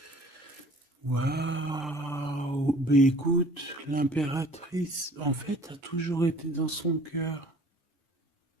Waouh! Ben écoute, l'impératrice, en fait, a toujours été dans son cœur.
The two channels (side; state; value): both; normal; correlation 0.51